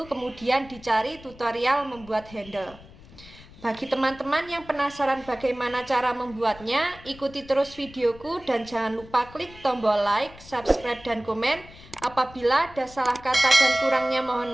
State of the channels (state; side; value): noise; left; rumble, 20 dB below the sound